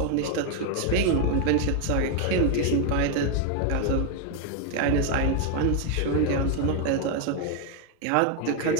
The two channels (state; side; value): different; both; correlation 0.01